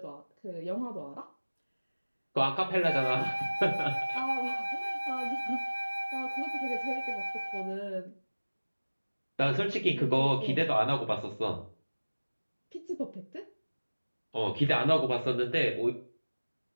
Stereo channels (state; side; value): inverted; both; correlation -1.00